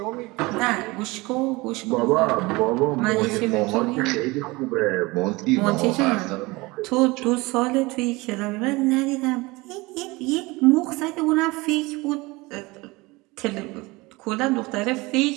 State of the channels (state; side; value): quieter; left; 23.0 dB